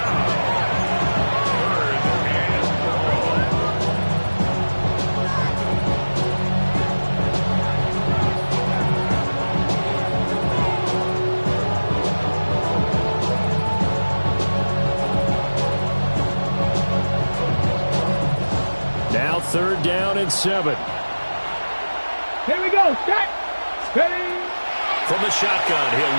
Now 3rd down and 7. Here we go. Set. Ready. From the shotgun, he'll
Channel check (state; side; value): inverted; both; correlation -1.00